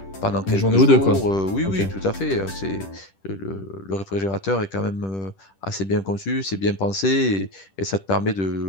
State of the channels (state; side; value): late; right; 10 ms